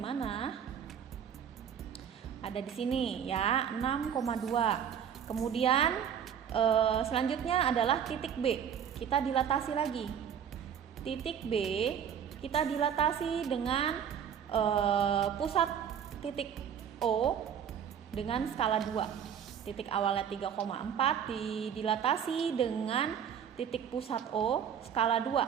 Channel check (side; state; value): left; quieter; 8.4 dB